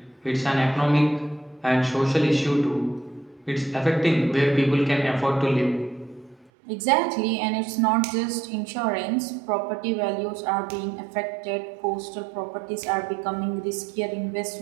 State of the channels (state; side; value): drops out; left; at 6.5 s